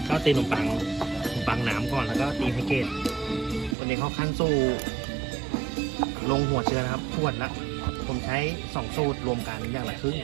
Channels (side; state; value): left; drops out; at 3.8 s